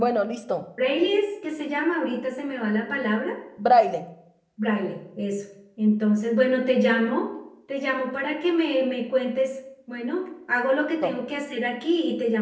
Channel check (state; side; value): identical; both; correlation 1.00